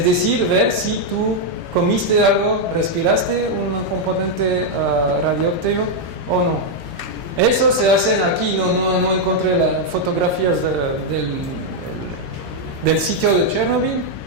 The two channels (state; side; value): late; left; 13 ms